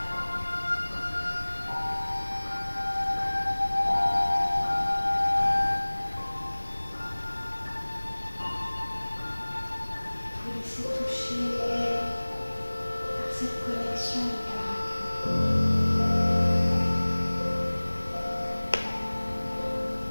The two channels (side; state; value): both; inverted; correlation -1.00